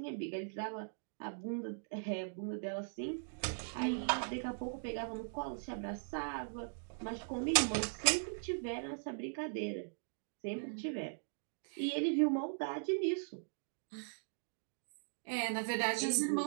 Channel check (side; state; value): left; silent; digital silence